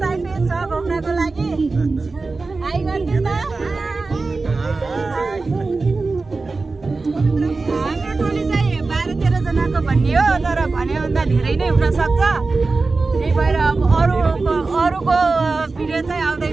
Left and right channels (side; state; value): left; quieter; 3.8 dB